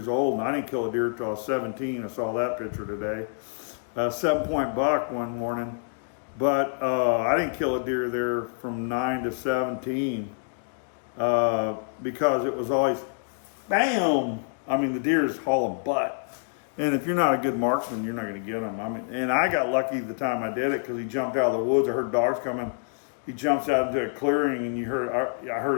old, and I didn't kill a deer until I was 17. I saw that picture today. 7-point buck one morning. But I didn't kill a deer there from 9 to 17 because it was always, bam! The deer is hauling butt. And if you're not a good marksman, you're not going to get them. And I got lucky the time I did it, because he jumped out of the woods. I heard dogs coming. He jumps out into a clearing, and I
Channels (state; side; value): silent; right; digital silence